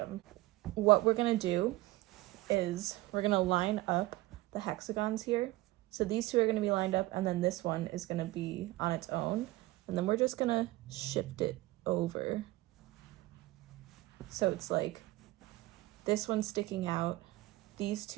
What we're gonna do is we're gonna line up the hexagons here. So these two are gonna be lined up, and then this one is gonna be on its own. And then we're just gonna shift it over. So it's like this one's sticking out. These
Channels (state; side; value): quieter; left; 18.9 dB